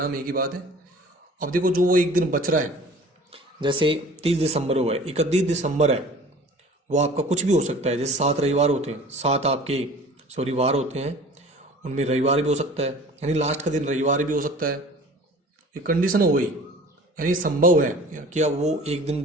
एक ही बात है। अब देखो, जो वो एक दिन बच रहा है, जैसे 30 दिसंबर हुआ है, 31 दिसंबर है, वो आपका कुछ भी हो सकता है। जैसे 7 रविवार होते हैं, 7 आपके वार होते हैं, उनमें रविवार भी हो सकता है, यानी लास्ट का दिन रविवार भी हो सकता है। ये कंडीशन हो गई, यानी संभव है कि अब वो एक दिन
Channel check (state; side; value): normal; both; correlation 0.44